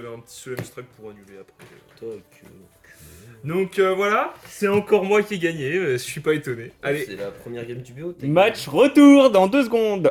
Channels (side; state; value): both; identical; correlation 1.00